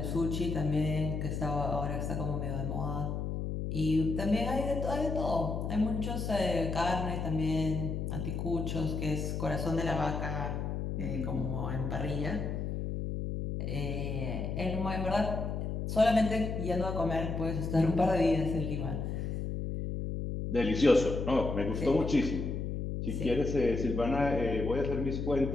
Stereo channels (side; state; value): left; noise; hum, 3 dB below the sound